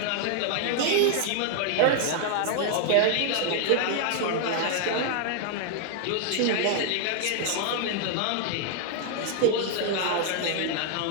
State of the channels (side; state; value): both; different; correlation 0.00